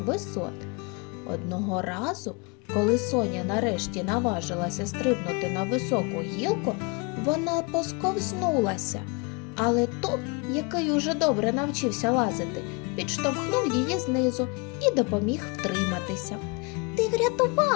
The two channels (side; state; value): right; quieter; 30.1 dB